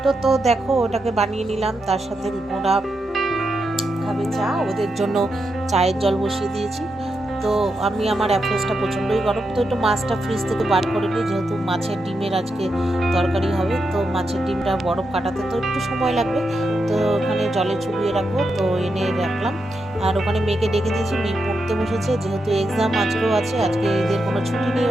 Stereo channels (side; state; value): both; normal; correlation 0.85